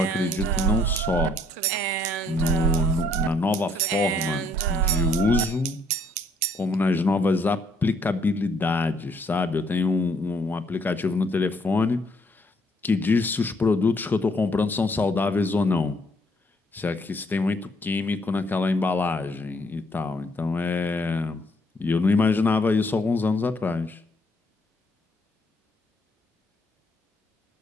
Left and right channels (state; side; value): normal; both; correlation 0.67